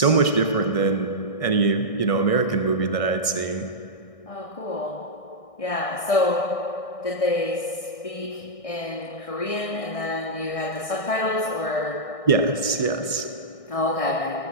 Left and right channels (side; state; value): right; late; 1.6 ms